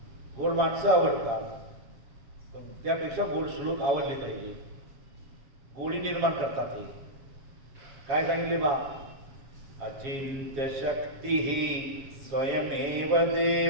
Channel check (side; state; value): left; late; 7.4 ms